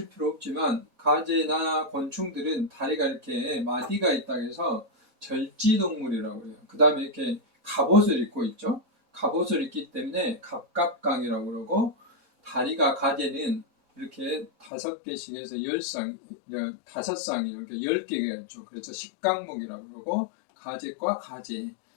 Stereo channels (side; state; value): right; drops out; at 14.7 s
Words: 필요 없지만 가재나 곤충들은 다리가 이렇게 마디가 있다 해서 절지동물이라고 해요. 그 다음에 이렇게 갑옷을 입고 있죠. 갑옷을 입기 때문에 갑갑강이라고 그러고 다리가 가재는 이렇게 5개씩에서 10쌍, 5쌍이 이렇게 10개가 있죠. 그래서 식강목이라고 그러고 가재과 가재